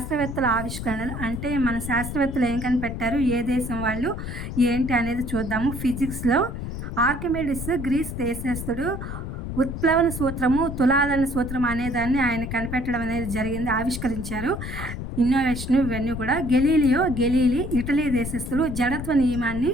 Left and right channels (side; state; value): left; noise; rumble, 6 dB below the sound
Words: ఆవిష్కరణలు అంటే మన శాస్త్రవేత్తలు ఏం కనిపెట్టారు, ఏ దేశం వాళ్ళు ఏంటి అనేది చూద్దాము. ఫిజిక్స్లో ఆర్కిమిడిస్ గ్రీస్ దేశస్థుడు ఉత్ప్లవన సూత్రము, తులాదన సూత్రం అనేదాన్ని ఆయన కనిపెట్టడం అనేది జరిగింది, ఆవిష్కరించారు. ఇన్నోవేషన్ ఇవన్నీ కూడా. గెలీలీ ఇటలీ దేశస్థుడు జడత్వ నియమాన్ని